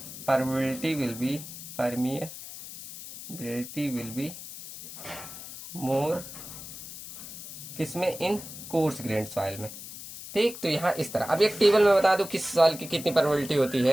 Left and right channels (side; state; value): left; noise; hiss, 12 dB below the sound